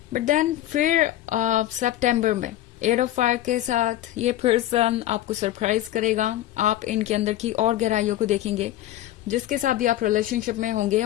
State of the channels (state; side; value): quieter; right; 13.9 dB